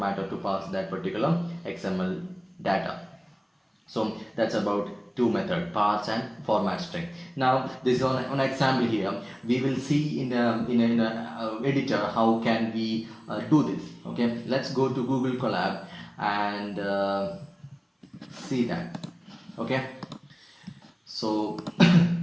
or to parse that particular XML data. So that's about two methods, parse and format string. Now this is on example here. We will see in a editor how can we do this. Okay, let's go to Google Colab and see that. Okay. So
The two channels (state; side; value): identical; both; correlation 1.00